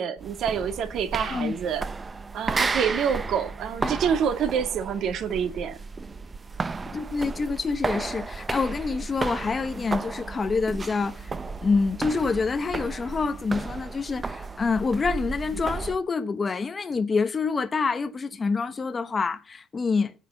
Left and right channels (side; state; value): both; normal; correlation 0.79